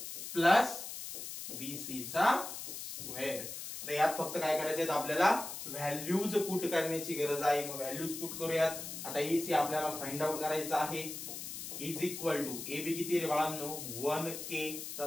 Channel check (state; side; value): noise; left; hiss, 8 dB below the sound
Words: प्लस BC चा स्क्वेअर. तर यात फक्त काय करायचे आहेत आपल्याला, व्हॅल्यूज पुट करण्याची गरज आहे. मग व्हॅल्यूज पुट करूयात. आता AC आपल्याला फाइंड आउट करायचा आहे. इज इक्वल टू AB किती रे बाळांनो, 1K